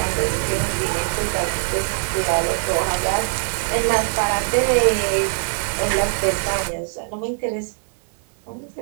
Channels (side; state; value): left; silent; digital silence